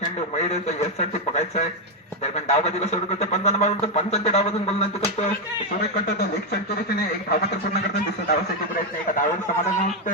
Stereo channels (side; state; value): both; normal; correlation 0.04